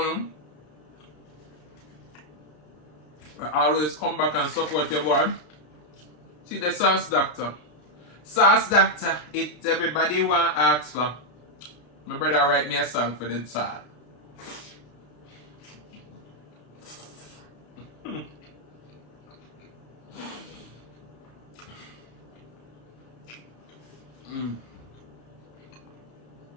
them. I always come back and support your boy. See the Sauce Dackta. Sauce Dackta, it's everybody want to ask for. My brother write me a song for the sauce.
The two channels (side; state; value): right; late; 33 ms